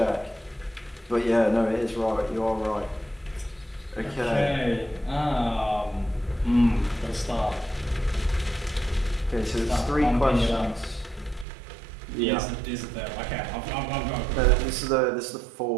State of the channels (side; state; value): left; drops out; at 11.5 s